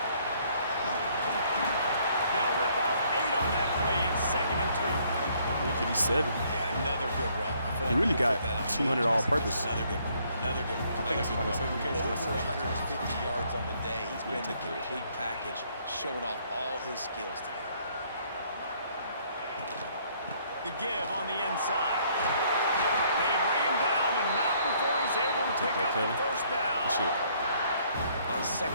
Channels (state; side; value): inverted; both; correlation -0.65